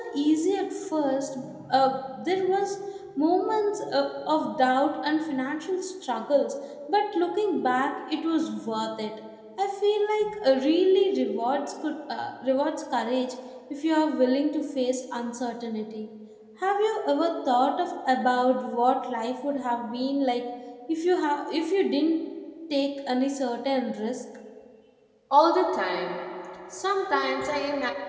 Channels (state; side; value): identical; both; correlation 1.00